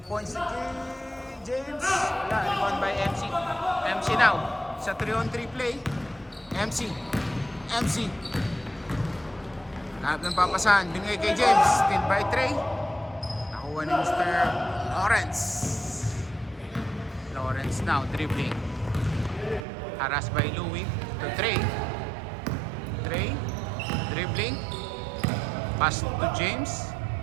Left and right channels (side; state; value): left; drops out; at 19.7 s